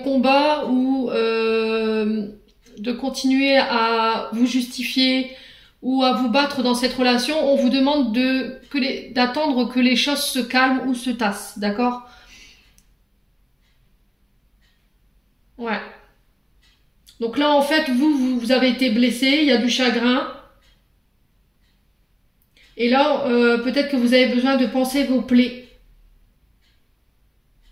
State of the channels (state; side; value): identical; both; correlation 1.00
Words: ou de continuer à vous justifier ou à vous battre dans cette relation. On vous demande d'attendre que les choses se calment ou se tassent, d'accord? Ouais. Donc là, en fait, vous avez été blessé, il y a du chagrin. Et là, peut-être que vous avez besoin de penser vos plaies.